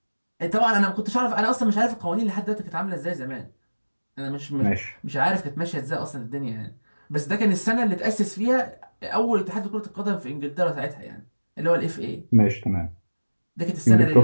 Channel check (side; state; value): both; inverted; correlation -1.00